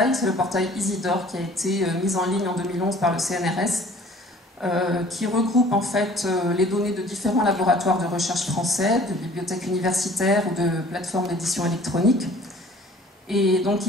c'est le portail Isidore qui a été mis en ligne en 2011 par le CNRS, qui regroupe en fait les données de différents laboratoires de recherche français, de bibliothèques universitaires ou de plateformes d'édition électronique. Et donc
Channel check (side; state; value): both; normal; correlation 0.51